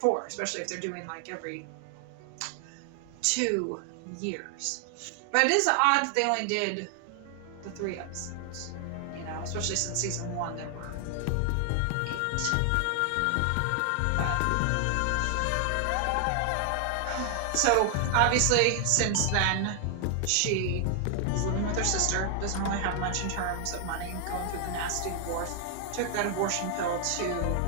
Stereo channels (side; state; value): both; different; correlation 0.00